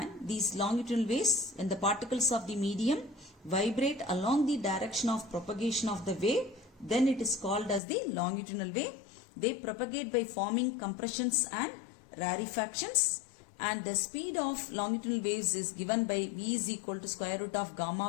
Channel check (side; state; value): right; drops out; at 7.8 s